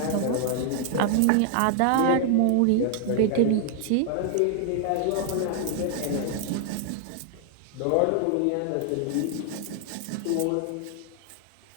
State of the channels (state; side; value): different; both; correlation 0.00